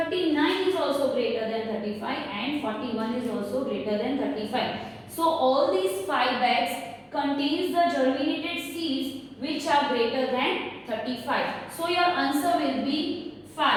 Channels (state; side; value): identical; both; correlation 1.00